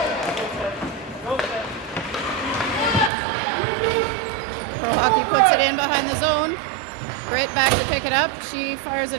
Pro Hockey puts it in behind the zone. Britt back to pick it up. She fires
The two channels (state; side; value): drops out; left; at 3.1 s